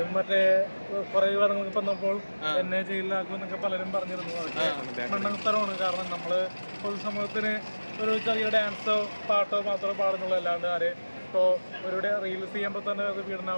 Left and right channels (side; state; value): both; inverted; correlation -1.00